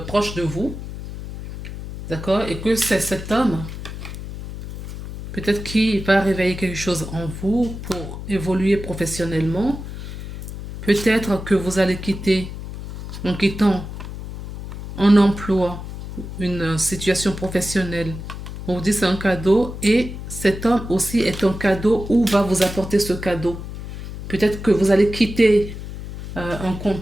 vous, d'accord? Et que c'est cet homme, peut-être qui va réveiller quelque chose en vous pour évoluer professionnellement. Peut-être que vous allez quitter, en quittant un emploi, une situation professionnelle. On vous dit c'est un cadeau et cet homme aussi est un cadeau ou va vous apporter ce cadeau. Peut-être que vous allez quitter un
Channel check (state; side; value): noise; left; hum, 9 dB below the sound